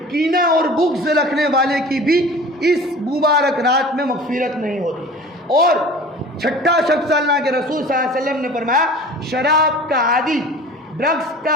کینہ اور بغض رکھنے والے کی بھی اس مبارک رات میں مغفرت نہیں ہوتی۔ اور چھٹا شخص اللہ کے رسول صلی اللہ علیہ وسلم نے فرمایا شراب کا عادی، ڈرگس کا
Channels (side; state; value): both; normal; correlation 0.41